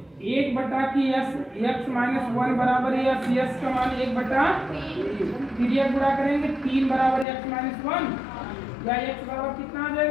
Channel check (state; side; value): drops out; right; at 7.2 s